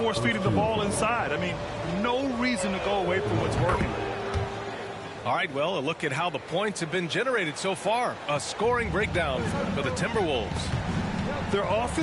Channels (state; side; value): identical; both; correlation 1.00